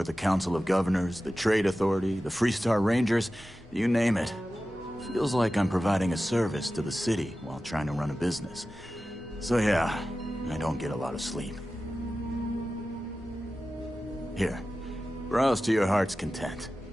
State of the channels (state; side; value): normal; both; correlation 0.94